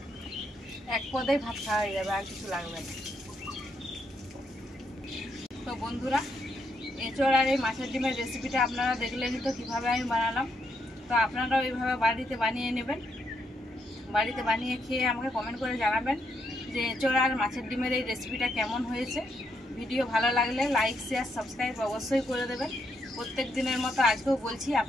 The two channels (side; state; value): both; normal; correlation 0.77